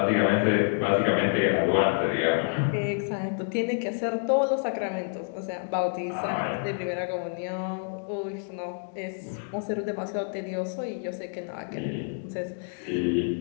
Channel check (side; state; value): right; silent; 59 dB below the other